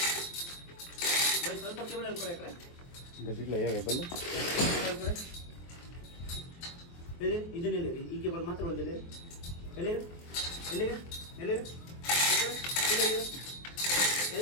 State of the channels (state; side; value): late; right; 23 ms